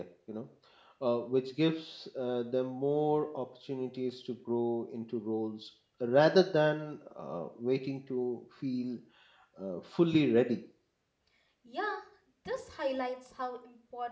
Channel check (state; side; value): identical; both; correlation 1.00